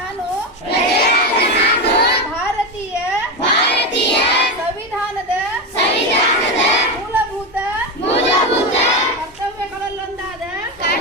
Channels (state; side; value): normal; both; correlation 0.14